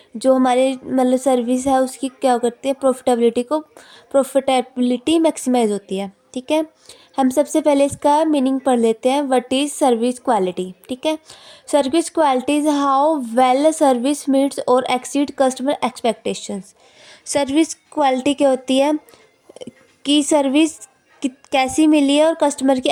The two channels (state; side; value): identical; both; correlation 1.00